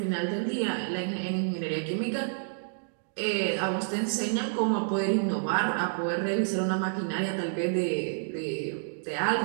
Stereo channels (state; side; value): silent; left; digital silence